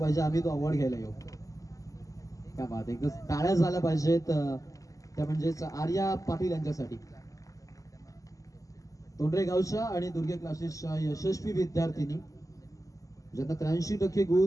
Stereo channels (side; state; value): right; late; 0.16 ms